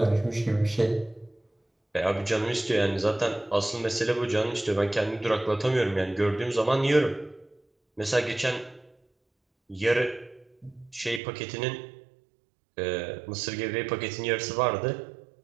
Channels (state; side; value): drops out; left; at 11.2 s